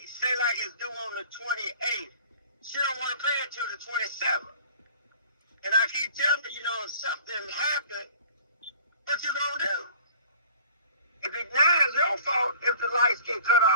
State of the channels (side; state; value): both; inverted; correlation -0.47